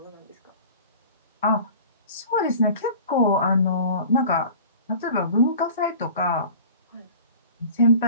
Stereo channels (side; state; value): both; inverted; correlation -0.42